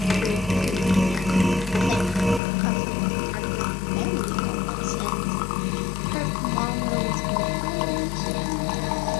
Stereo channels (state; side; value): drops out; right; at 2.4 s